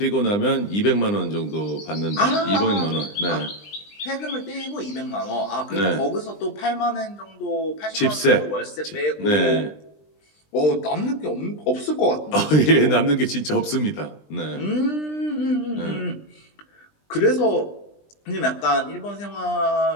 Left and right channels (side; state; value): right; late; 20 ms